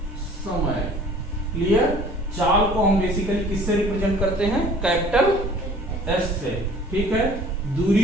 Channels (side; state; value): both; normal; correlation 0.51